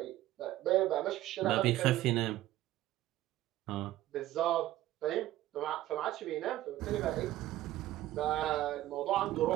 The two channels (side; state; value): left; quieter; 14.9 dB